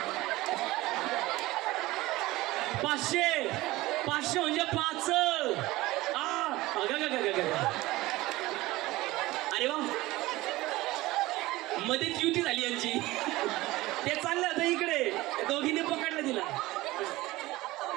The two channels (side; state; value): left; quieter; 18.9 dB